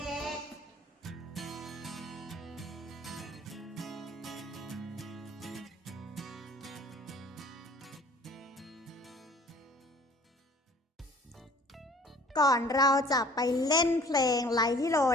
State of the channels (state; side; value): normal; both; correlation 0.51